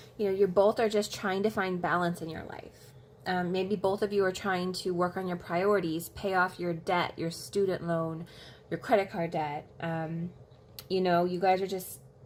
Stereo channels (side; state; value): both; identical; correlation 1.00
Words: You know, you both are just trying to find balance in your life. Maybe both of you are trying to work on your priorities, pay off your debt, your student loan, your credit card debt. You know, you guys are just